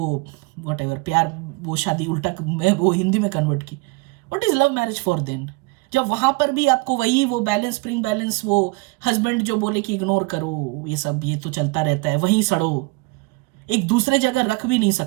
वट एवर, प्यार वो शादी उल्टा मैं वो हिंदी में कन्वर्ट की, what is love marriage for then? जब वहां पर भी आपको वही वो बैलेंस, स्प्रिंग बैलेंस, वो हस्बैंड जो बोले कि इग्नोर करो ये सब, ये तो चलता रहता है, वहीं सड़ो, एक दूसरे जगह रख भी नहीं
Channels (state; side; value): quieter; left; 26.8 dB